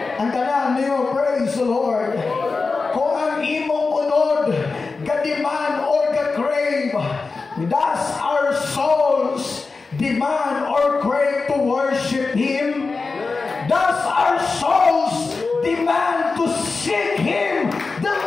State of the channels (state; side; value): quieter; right; 4.2 dB